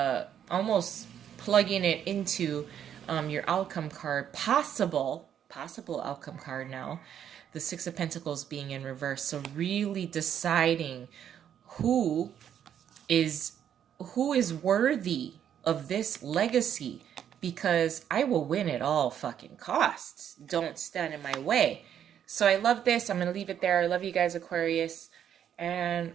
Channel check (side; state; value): left; quieter; 9.4 dB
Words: almost plugging it into your outcome card, possible outcome card now, the Six of Pentacles being in reverse. So really deciding who is worthy of this legacy, because I will win at all fucking costs. Don't stand in my way. So I love this. I'm going to leave it there. I love you guys, Aquarius. And